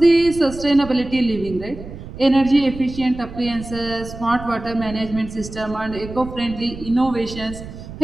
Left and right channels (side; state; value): right; noise; rumble, 13 dB below the sound